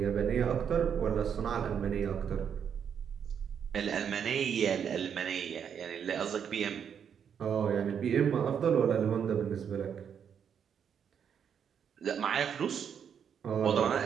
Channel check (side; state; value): left; quieter; 7.8 dB